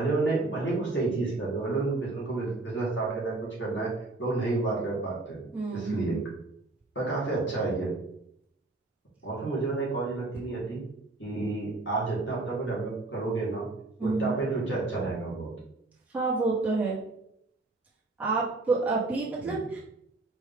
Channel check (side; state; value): left; quieter; 3.0 dB